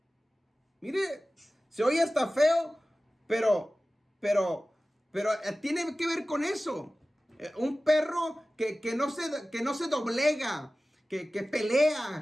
Mire, se oye hasta feo, pero tiene que ver con eso. Un perro que no se doblega, que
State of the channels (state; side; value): normal; both; correlation 0.96